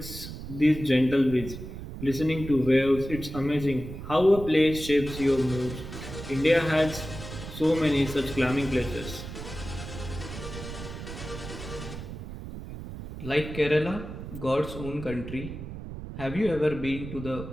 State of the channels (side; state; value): right; noise; rumble, 10 dB below the sound